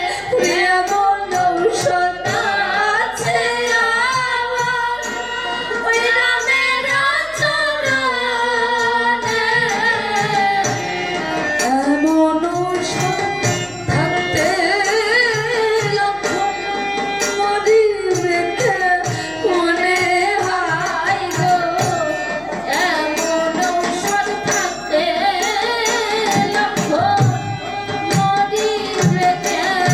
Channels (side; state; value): left; noise; hum, 25 dB below the sound